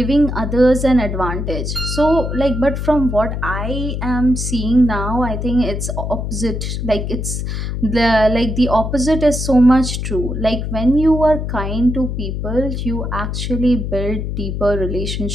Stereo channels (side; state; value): left; noise; hum, 3 dB below the sound